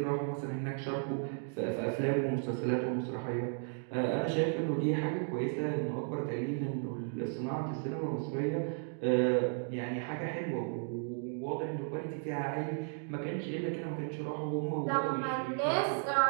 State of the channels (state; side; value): silent; left; 55 dB below the other